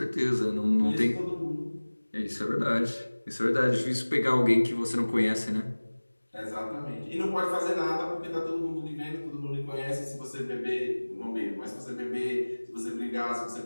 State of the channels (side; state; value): both; inverted; correlation -1.00